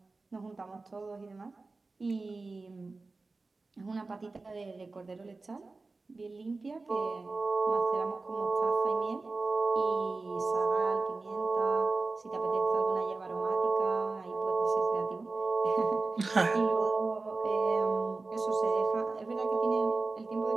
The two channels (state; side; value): quieter; left; 3.6 dB